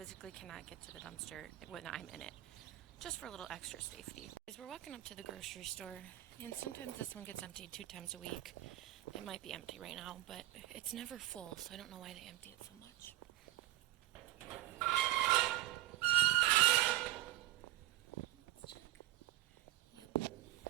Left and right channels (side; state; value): left; quieter; 16.0 dB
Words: cannot get to the dumpster when I'm in it. Just for a little extra safety. As we're walking up to the grocery store, and sometimes this one gets emptied 2 times a week. It might be empty right now, but it's never full, so I don't know why they empty it so much. Let's check. Yep.